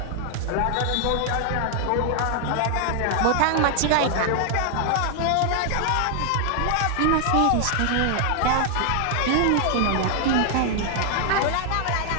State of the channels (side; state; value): both; different; correlation 0.00